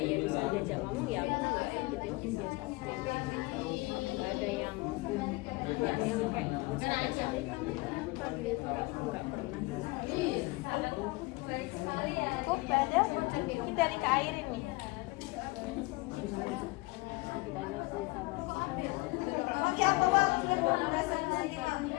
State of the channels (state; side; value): quieter; right; 23.8 dB